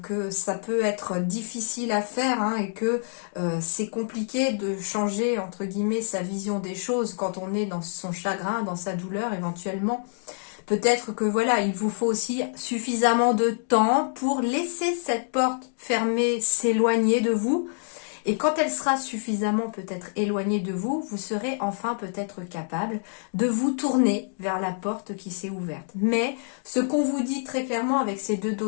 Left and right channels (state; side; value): silent; right; digital silence